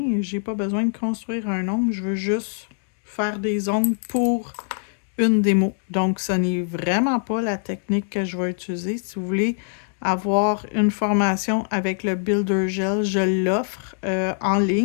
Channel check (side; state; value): right; silent; digital silence